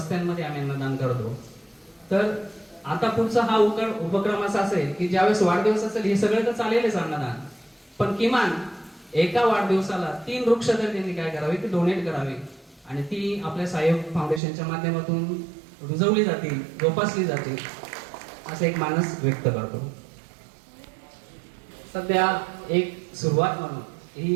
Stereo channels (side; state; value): left; drops out; at 14.4 s